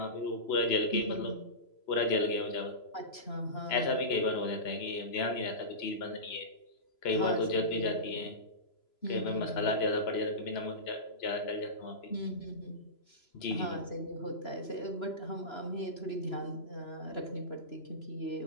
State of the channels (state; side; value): late; right; 3.0 ms